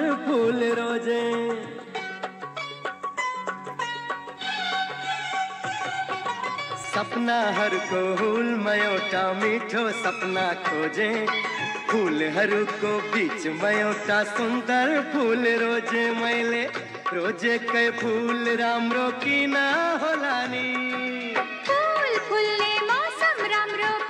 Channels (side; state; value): both; identical; correlation 1.00